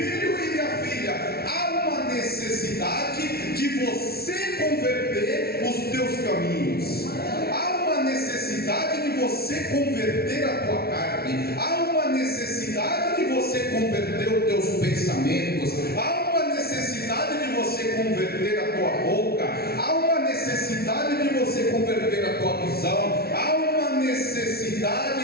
e minha filha, há uma necessidade de você converter os teus caminhos. Há uma necessidade de você converter a tua carne. Há uma necessidade de você converter os teus pensamentos. Há uma necessidade de você converter a tua boca. Há uma necessidade de você converter a tua visão. Há uma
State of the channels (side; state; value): right; late; 0.45 ms